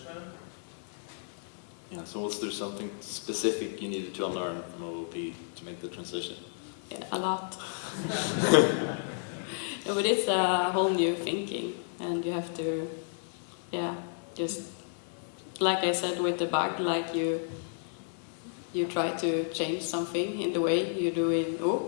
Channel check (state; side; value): silent; right; digital silence